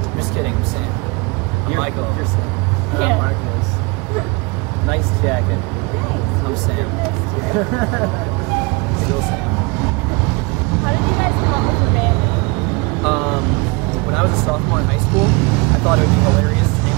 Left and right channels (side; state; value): left; quieter; 28.0 dB